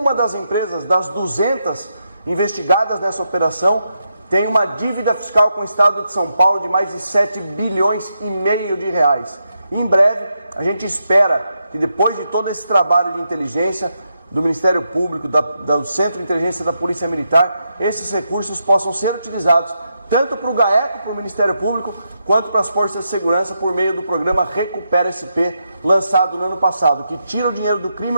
das empresas das 200 investigadas nessa operação tem uma dívida fiscal com o Estado de São Paulo de mais de 7,5 bilhões de reais. E em breve, a gente espera que depois de todo esse trabalho de inteligência do Ministério Público, do Centro de Inteligência da Polícia Militar, esses recursos possam ser utilizados tanto para o GAECO, para o Ministério Público, quanto para as Forças de Segurança por meio do programa Recupera SP, lançado no ano passado, que tira o dinheiro do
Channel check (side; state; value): both; inverted; correlation -0.83